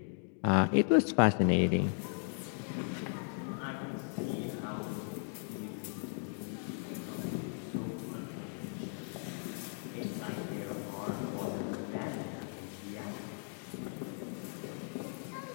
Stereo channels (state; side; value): silent; right; 53 dB below the other